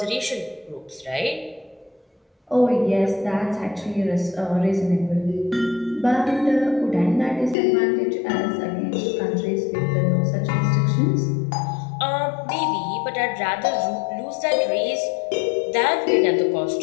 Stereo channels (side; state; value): right; drops out; at 7.6 s